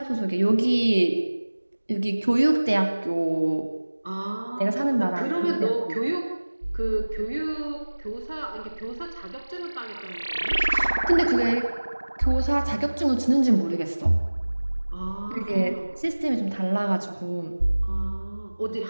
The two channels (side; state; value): both; inverted; correlation -1.00